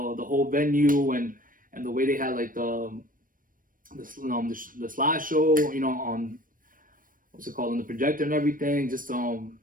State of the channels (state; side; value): late; left; 0.40 ms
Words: venue, and the way they had like the slideshow, you know, on what's it called, on the projector and everything. Just